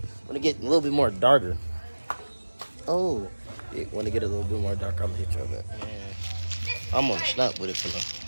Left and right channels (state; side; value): inverted; both; correlation -1.00